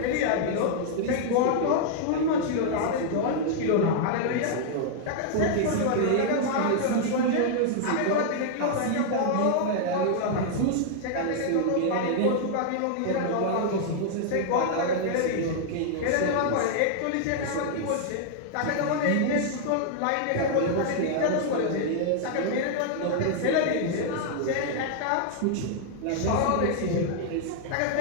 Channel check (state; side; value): different; both; correlation -0.01